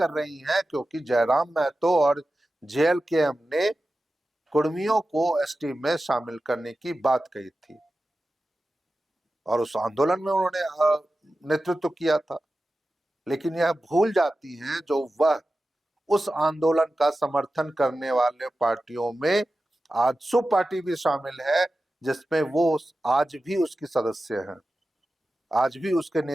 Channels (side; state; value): both; normal; correlation 0.94